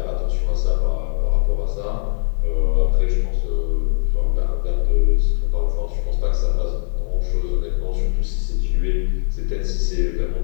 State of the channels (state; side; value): silent; right; digital silence